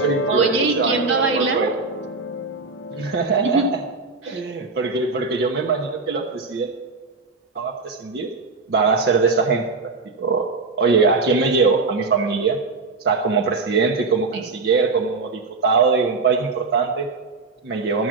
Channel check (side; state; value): left; quieter; 4.0 dB